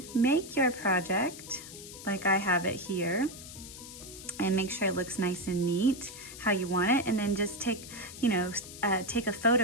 make your project like I have it here and make sure it looks nice and neat how you want it, and then just take a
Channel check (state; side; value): noise; left; hiss, 14 dB below the sound